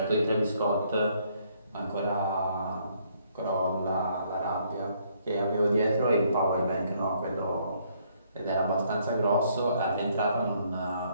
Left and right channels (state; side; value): inverted; both; correlation -0.68